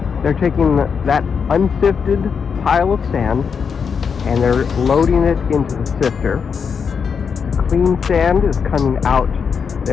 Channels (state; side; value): quieter; right; 6.3 dB